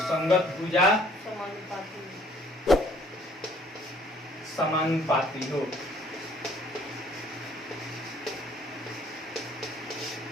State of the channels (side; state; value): both; normal; correlation 0.58